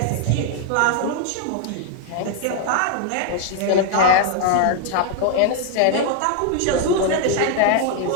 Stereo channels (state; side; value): different; both; correlation 0.00